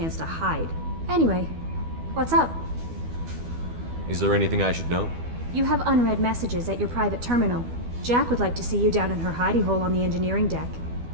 to hide. Anyway, what's up? Is there anything I should know? You have unread messages at your private terminal. Jack would like to see you down in her hidey hole on the engineering deck.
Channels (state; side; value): late; left; 12 ms